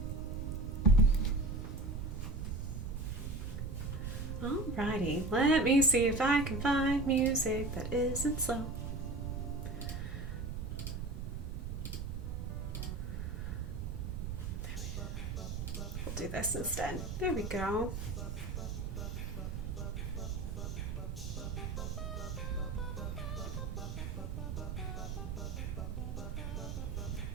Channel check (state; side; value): noise; right; rumble, 4 dB below the sound